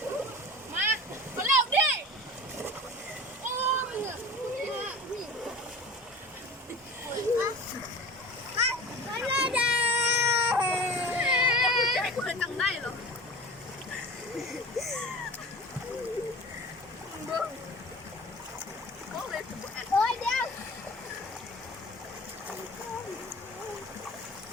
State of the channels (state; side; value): normal; both; correlation 0.36